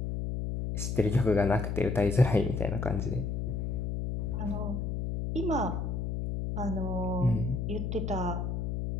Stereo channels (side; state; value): left; noise; hum, 2 dB below the sound